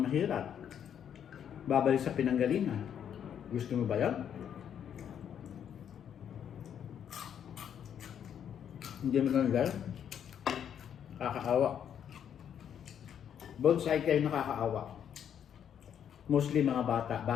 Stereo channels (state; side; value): quieter; right; 8.9 dB